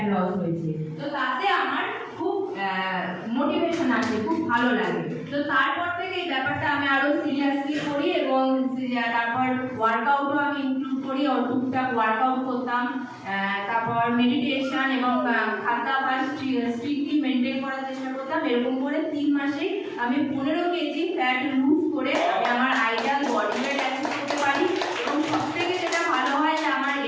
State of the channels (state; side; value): identical; both; correlation 1.00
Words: লস হয়েছে। তো তাতে আমার খুব মোটিভেশন আসে, খুব ভালো লাগে। তো তারপর থেকে এই ব্যাপারটা আমি আরো সিরিয়াসলি করি এবং তারপর ওয়ার্কআউটও আমি ইনক্লুড করি, টুকটাক ওয়ার্কআউট করতাম। তারপর মেডিটেশন এবং খাদ্যাভ্যাস স্ট্রিক্টলি মেনটেন করার চেষ্টা করতাম। এরকম করে 3 মাসে আমি 15 কেজি ফ্যাট লুজ করে আমি আমার আইডিয়াল বডি ওয়েট অ্যাচিভ করতে পারি। এবং সবথেকে যেটা ভালো হয় যে আমার